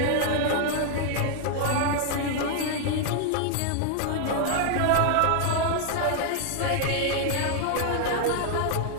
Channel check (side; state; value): both; different; correlation 0.00